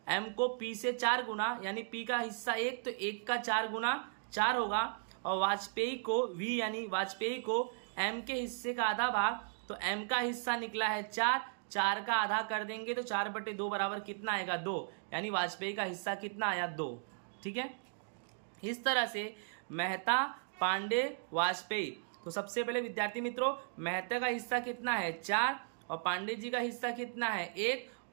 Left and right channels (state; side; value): silent; left; digital silence